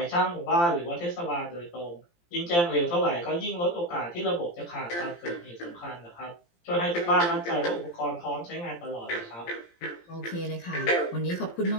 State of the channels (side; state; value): right; late; 17 ms